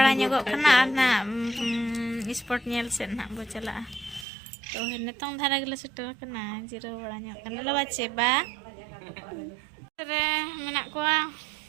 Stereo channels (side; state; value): left; drops out; at 4.2 s